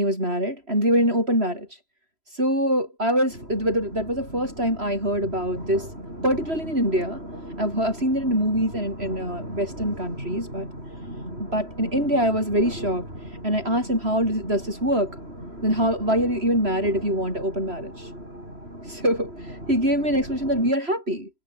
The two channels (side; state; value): left; late; 3.0 ms